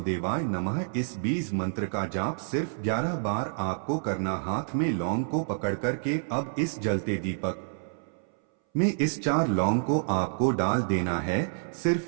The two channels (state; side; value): silent; left; 59 dB below the other